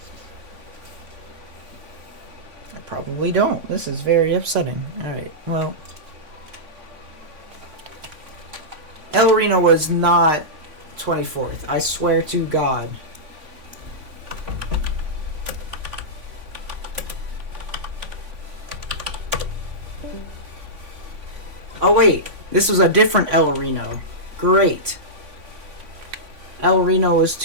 I probably don't. This is very upsetting. Alright, well. El Reno was not 24th. I swear to God. Oh wait, this was a different El Reno. Great. El Reno was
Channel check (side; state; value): left; late; 3.5 ms